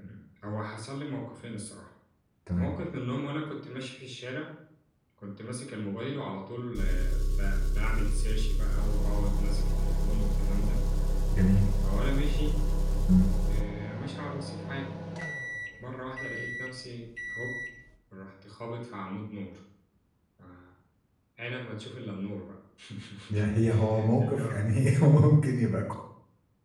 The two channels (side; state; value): both; identical; correlation 1.00